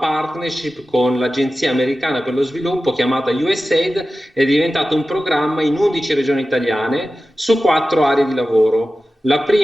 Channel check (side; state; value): both; normal; correlation 0.94